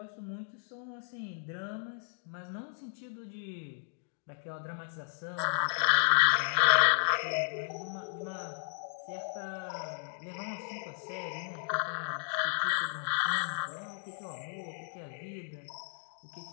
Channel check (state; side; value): silent; right; digital silence